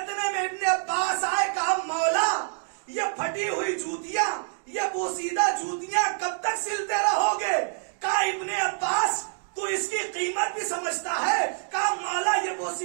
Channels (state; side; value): silent; left; digital silence